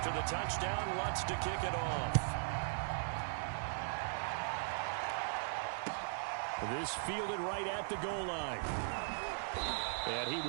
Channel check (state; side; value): silent; left; 52 dB below the other